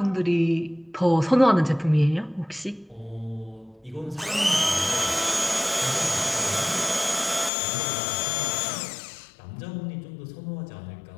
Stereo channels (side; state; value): right; drops out; at 7.5 s